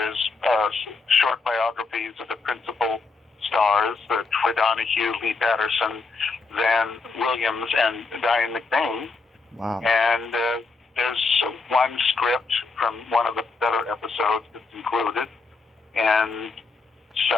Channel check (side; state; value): right; quieter; 4.1 dB